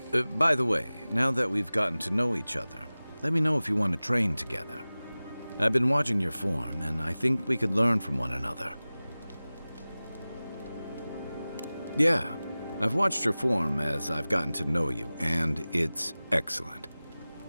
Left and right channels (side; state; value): both; inverted; correlation -0.98